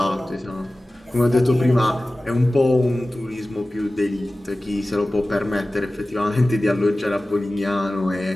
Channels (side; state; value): both; normal; correlation 0.96